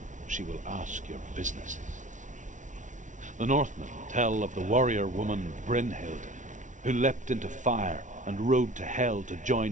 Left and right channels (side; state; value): left; late; 0.37 ms